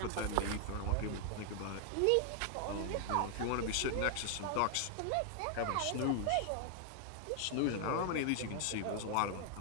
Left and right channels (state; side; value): different; both; correlation 0.00